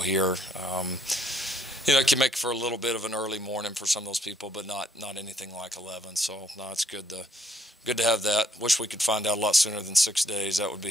here. It can make for a little bit of an early morning for some of those people, but not anything like 11. So no, it's good to have that. Wish we could find out a lot sooner than 6 days. That would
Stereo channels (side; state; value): both; normal; correlation 0.68